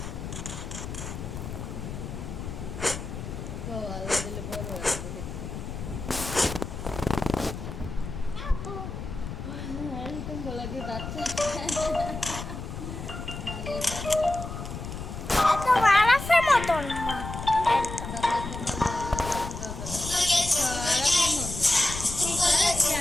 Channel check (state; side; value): noise; left; rumble, 8 dB below the sound